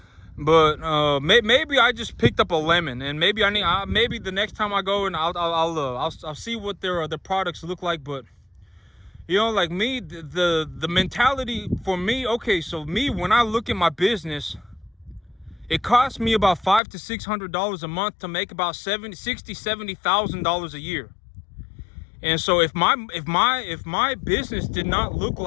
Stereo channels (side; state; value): right; drops out; at 16.8 s